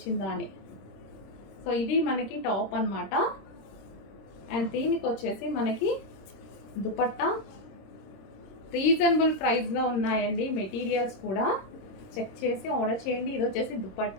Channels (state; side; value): late; right; 26 ms